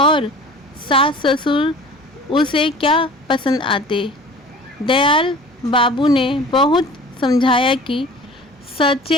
सास ससुर उसे क्या पसंद आते। दयाल बाबू ने बहुत समझाया कि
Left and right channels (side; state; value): both; normal; correlation 0.43